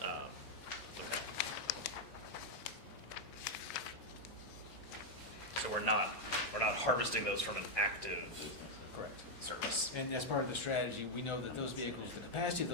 Okay. So we're not harvesting those from an active Correct. service. And as part of the strategy, we know that those vehicles, the capacity of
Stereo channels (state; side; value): normal; both; correlation 0.00